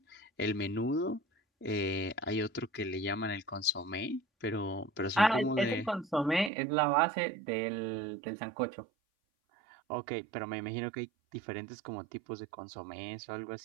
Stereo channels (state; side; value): drops out; left; at 6.5 s